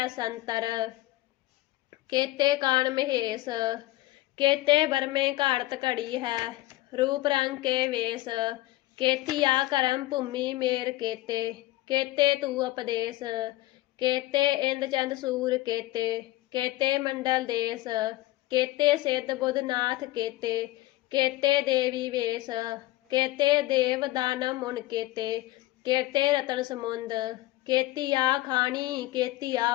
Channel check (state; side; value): quieter; right; 17.6 dB